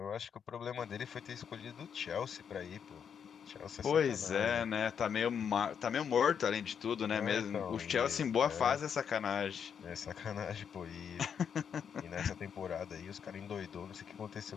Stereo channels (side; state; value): right; quieter; 7.5 dB